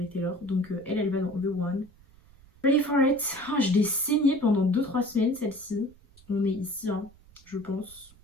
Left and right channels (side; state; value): right; noise; rumble, 26 dB below the sound